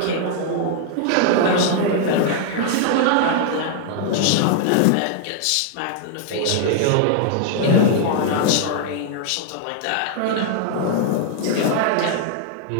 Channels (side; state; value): both; different; correlation -0.01